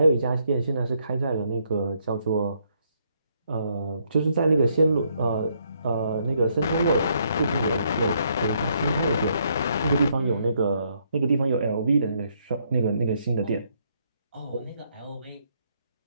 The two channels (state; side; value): inverted; both; correlation -0.72